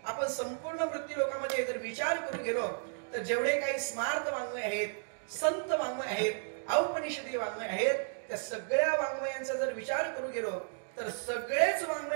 आपण संपूर्ण मृत्यू लोकांमध्ये जर विचार करून गेलो तर जेवढे काही स्मार्त वाङ्मय आहेत, संत वाङ्मय आहेत, औपनिषदी वाङ्मय आहेत, त्या सगळ्या वाङ्मयांचा जर विचार करू गेलो तर सगळेच वाङ्मय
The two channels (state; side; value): silent; left; digital silence